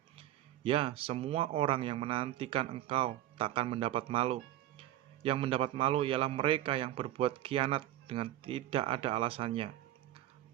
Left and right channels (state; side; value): quieter; left; 13.6 dB